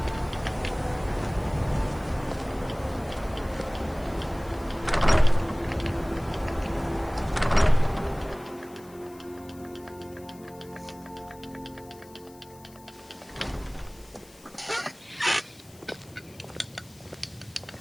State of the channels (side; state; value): left; noise; hiss, 24 dB below the sound